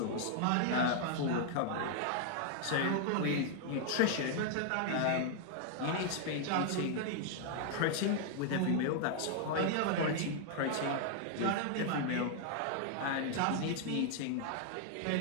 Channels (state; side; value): different; both; correlation 0.00